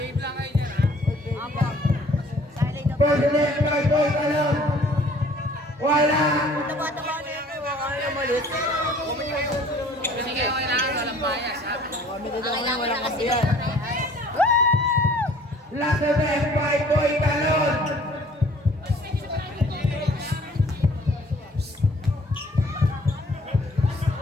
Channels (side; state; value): both; normal; correlation 0.54